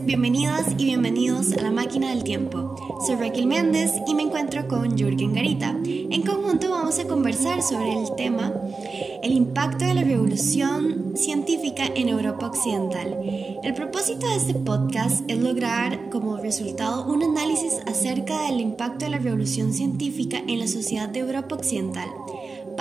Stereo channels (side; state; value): left; quieter; 4.2 dB